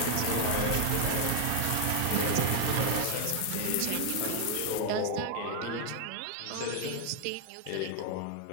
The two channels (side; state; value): both; different; correlation 0.00